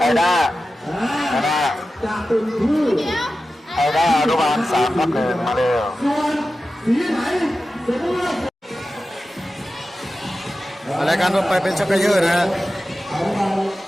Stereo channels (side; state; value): both; normal; correlation 0.93